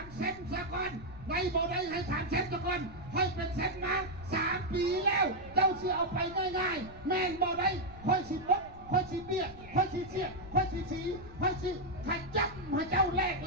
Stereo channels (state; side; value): noise; left; rumble, 17 dB below the sound